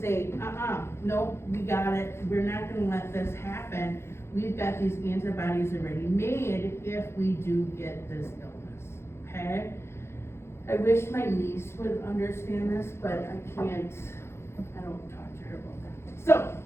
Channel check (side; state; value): right; late; 0.12 ms